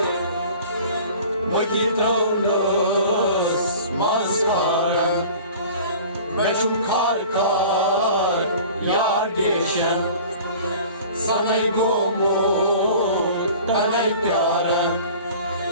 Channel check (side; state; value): both; inverted; correlation -0.43